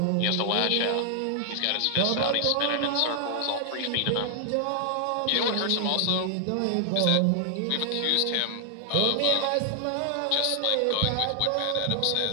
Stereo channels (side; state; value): both; different; correlation 0.00